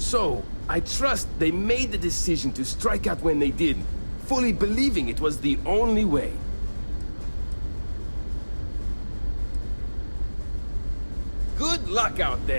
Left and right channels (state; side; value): inverted; both; correlation -1.00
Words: I trust they made the decision to strike out when they did, fully believing it was the only way. Good luck out